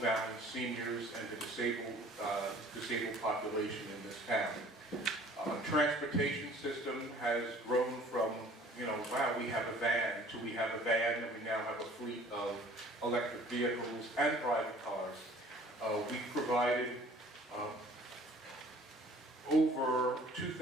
seniors and the disabled population in this town. Transportation system has grown from, wow, we have a van, to we have a van, and we now have a fleet of electric vehicles and private cars. We provided over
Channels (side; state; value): both; normal; correlation 0.52